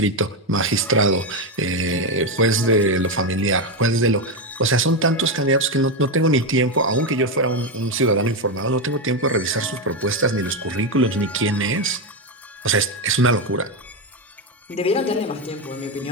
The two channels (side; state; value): both; normal; correlation 0.09